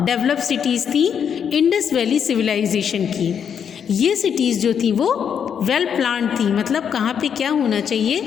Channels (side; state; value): right; quieter; 7.8 dB